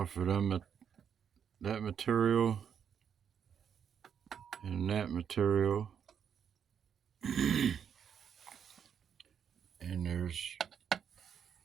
of them, that material and that material. And there's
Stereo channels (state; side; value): quieter; left; 7.9 dB